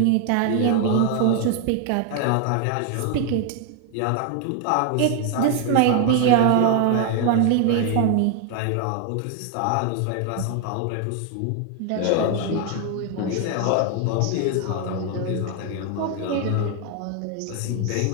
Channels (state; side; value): different; both; correlation 0.01